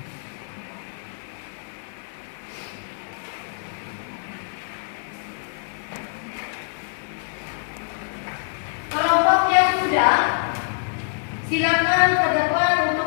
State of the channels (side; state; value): right; silent; digital silence